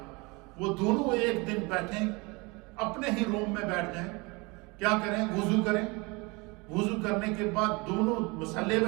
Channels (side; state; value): left; quieter; 26.6 dB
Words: وہ دونوں ایک دن بیٹھیں، اپنے ہی روم میں بیٹھ جائیں، کیا کریں، وضو کریں، وضو کرنے کے بعد دونوں مصلے